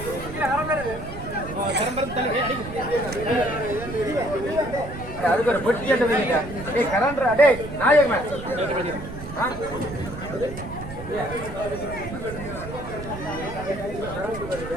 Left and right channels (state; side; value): noise; right; rumble, 11 dB below the sound